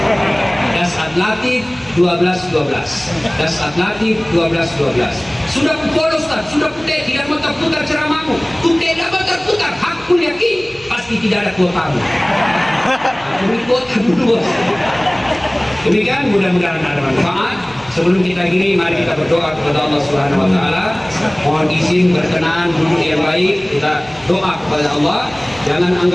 Dasat Latif 1212. Dasat Latif 1212. Sudah follow Ustaz, sudah putih, tidak mau terputar ceramahmu. Putih tidak mau terputar, aku yakin pasti tidak ada kuotamu. Beri kuota dulu. Demikian, mudah-mudahan ada manfaat. Sebelum kita gini, mari kita berdoa kepada Allah Subhanahu wa Ta'ala. Mohon izin berkenan duduk yang baik. Kita doa kepada Allah. Jangan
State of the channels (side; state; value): right; noise; hum, 24 dB below the sound